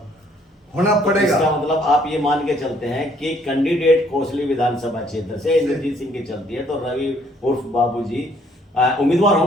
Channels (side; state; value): both; normal; correlation 0.64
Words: होना पड़ेगा। इसका मतलब आप ये मान के चलते हैं कि कैंडिडेट कोसली विधानसभा क्षेत्र से इंद्रजीत सिंह की चलती है तो रवि उर्फ बाबूजी उम्मीदवार